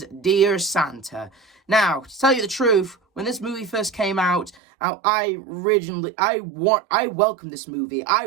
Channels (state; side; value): drops out; left; at 4.6 s